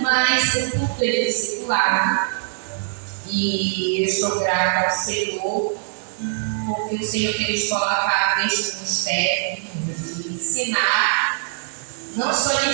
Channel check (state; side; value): silent; left; 64 dB below the other